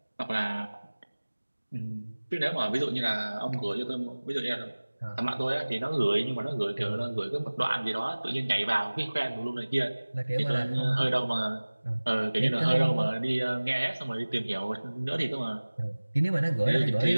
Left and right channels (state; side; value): inverted; both; correlation -1.00